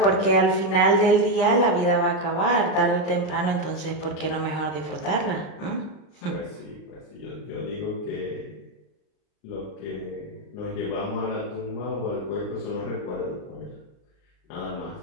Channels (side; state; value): right; late; 38 ms